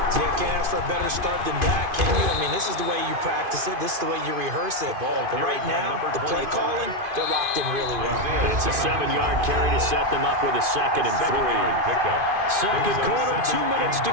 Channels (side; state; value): left; late; 2.5 ms